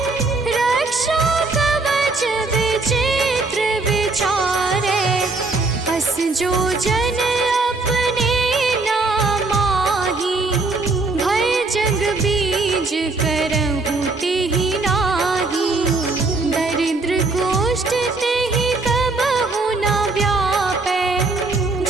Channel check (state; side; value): quieter; left; 3.5 dB